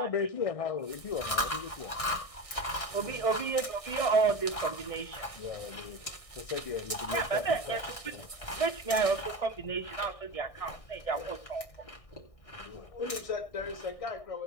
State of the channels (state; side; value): late; right; 1.6 ms